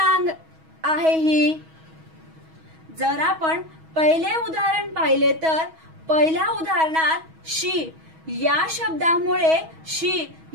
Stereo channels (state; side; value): late; left; 6.2 ms